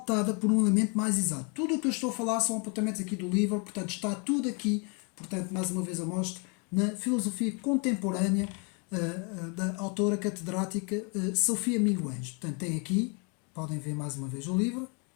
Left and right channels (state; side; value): quieter; right; 34.7 dB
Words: por um elemento mais exato. Tudo o que eu estou a falar são apontamentos aqui do livro, portanto está tudo aqui, portanto mais uma vez eu mostro, na filosofia contemporânea da autora catedrática Sofia Miguens. Portanto tem aqui, podem ver mais uma vez o livro,